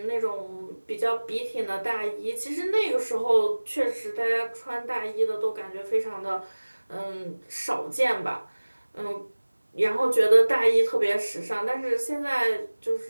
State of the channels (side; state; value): both; inverted; correlation -1.00